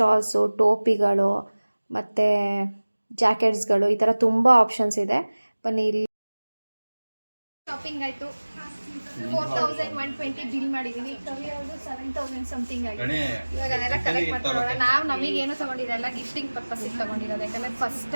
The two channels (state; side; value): inverted; both; correlation -1.00